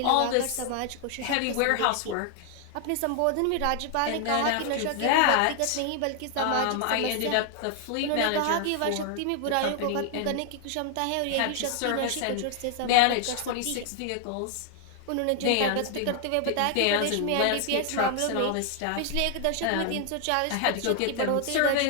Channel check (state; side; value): different; both; correlation 0.00